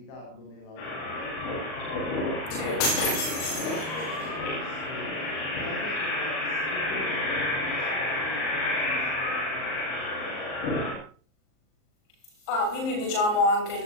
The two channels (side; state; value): right; late; 38 ms